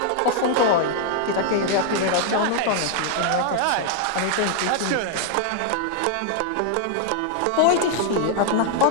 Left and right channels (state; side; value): different; both; correlation 0.00